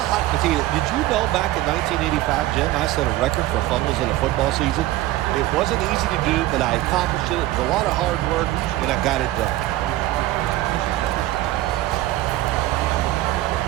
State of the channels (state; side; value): quieter; left; 16.0 dB